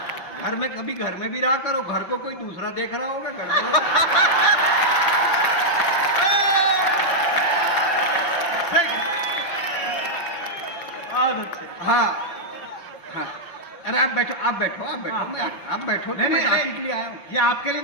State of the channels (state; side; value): late; right; 5.8 ms